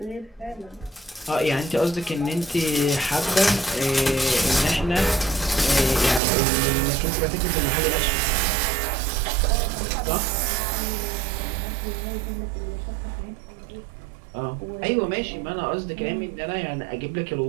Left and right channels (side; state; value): left; drops out; at 6.2 s